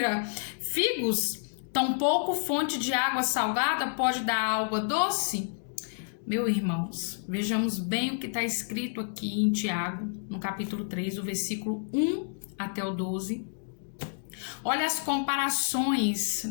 figos? Tampouco fonte de água salgada pode dar água doce? Meus irmãos, vejamos bem o que está escrito aqui em Tiago, no capítulo 3, o versículo 1 até o 12. Olha as comparações,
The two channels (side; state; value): right; silent; digital silence